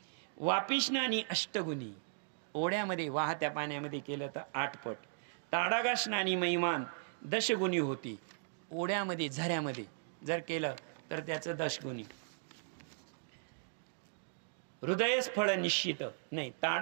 वापिस्नानी अष्टगुणी, ओढ्यामध्ये वाहत्या पाण्यामध्ये केलं तर 8 पट. ताडागास्नानी महिमान 10 गुणी होती, ओढ्यामध्ये झऱ्यामध्ये जर केलं तर त्याचं 10 गुणी. हृदयस फळ निश्चित नाही,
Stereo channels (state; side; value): silent; left; digital silence